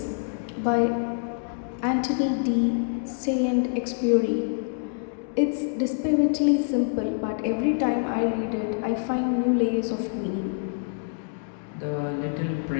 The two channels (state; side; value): silent; right; digital silence